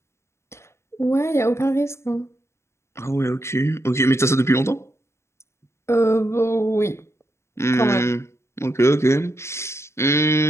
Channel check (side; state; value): right; late; 0.13 ms